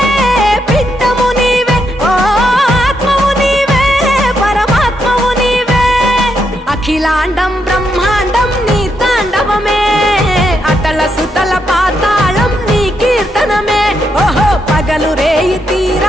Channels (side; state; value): both; normal; correlation 0.80